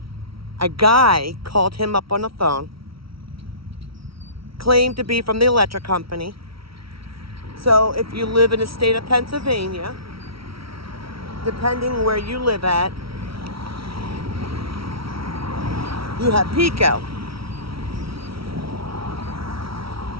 a guy called him up on the phone, claimed to be from the electric company. So if you live in the state of Pennsylvania, depending where you live at, you have PECO.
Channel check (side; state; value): left; late; 0.75 ms